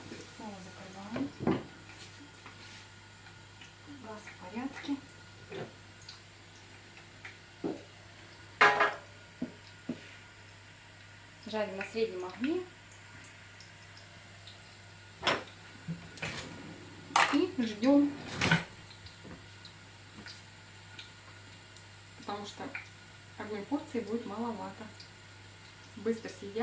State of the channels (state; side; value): identical; both; correlation 1.00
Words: Снова закрываем. Газ в порядке. Жарим на среднем огне. И ждем. Потому что одной порции будет маловато. Быстро